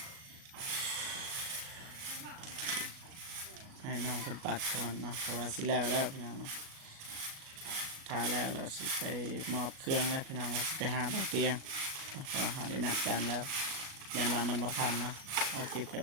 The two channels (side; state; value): left; late; 38 ms